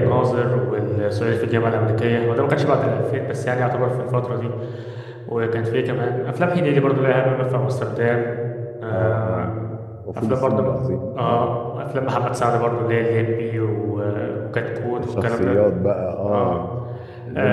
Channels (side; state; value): both; identical; correlation 1.00